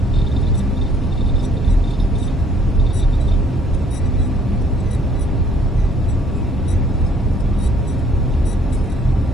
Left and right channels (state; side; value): normal; both; correlation 0.62